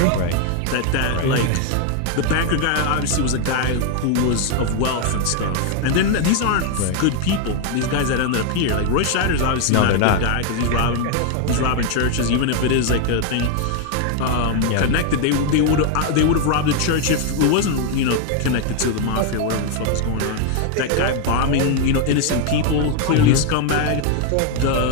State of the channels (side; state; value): both; different; correlation 0.01